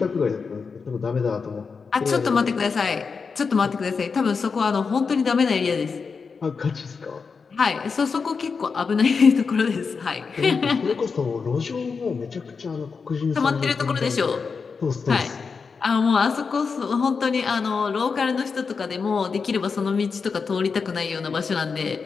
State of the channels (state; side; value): quieter; right; 5.2 dB